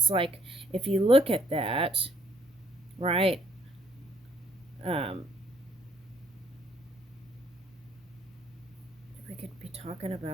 like, if you look at that, right, we could be talking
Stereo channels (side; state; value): both; normal; correlation 0.66